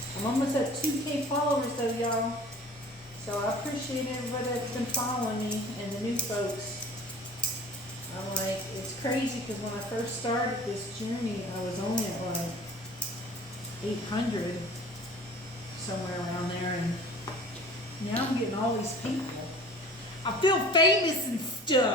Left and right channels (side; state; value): both; normal; correlation 0.44